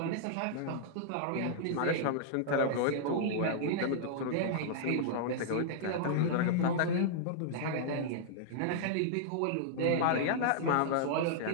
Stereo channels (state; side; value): different; both; correlation -0.01